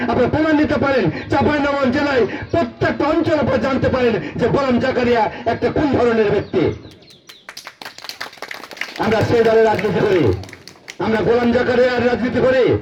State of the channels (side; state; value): both; identical; correlation 1.00